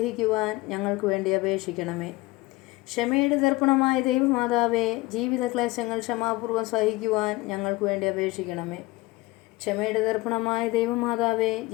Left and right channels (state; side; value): quieter; right; 21.2 dB